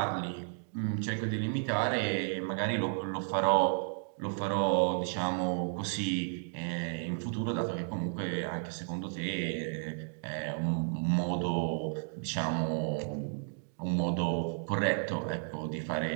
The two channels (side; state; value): left; silent; digital silence